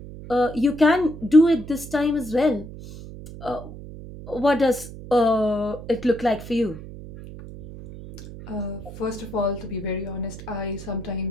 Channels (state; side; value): noise; right; hum, 13 dB below the sound